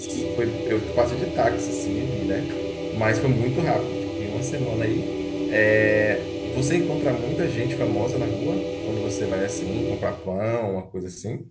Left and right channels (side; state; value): both; identical; correlation 1.00